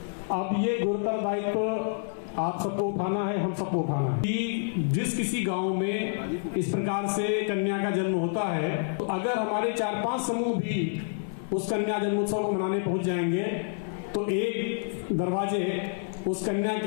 अब ये गुरुतर दायित्व आप सबको उठाना है, हम सबको उठाना है कि जिस किसी गांव में इस प्रकार से कन्या का जन्म होता है, तो अगर हमारे 4-5 समूह भी उस कन्या जन्मोत्सव को मनाने पहुंच जाएंगे तो एक दरवाजे उस कन्या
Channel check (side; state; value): right; silent; 55 dB below the other